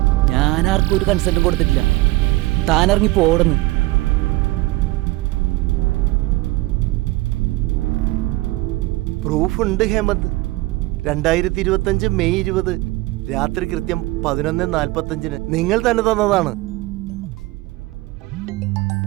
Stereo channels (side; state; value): left; quieter; 20.1 dB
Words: ഞാൻ ആർക്കും ഒരു കൺസെന്റും കൊടുത്തിട്ടില്ല. താൻ ഇറങ്ങി പോടുന്നു. പ്രൂഫ് ഉണ്ട് ഹേമന്ത്. 2025 മെയ് 20 രാത്രി കൃത്യം 11:45 നിങ്ങൾ തന്നെ തന്നതാണ്.